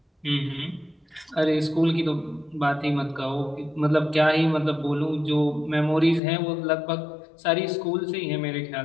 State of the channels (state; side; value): drops out; right; at 6.2 s